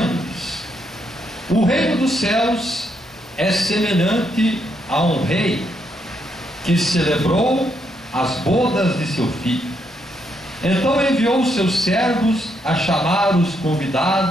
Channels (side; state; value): both; normal; correlation 0.77